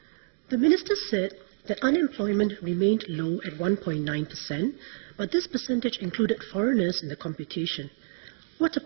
The Minister said that unemployment remained low at 1.9%, but this percentage included foreigners in the computation. What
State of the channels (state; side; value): silent; left; digital silence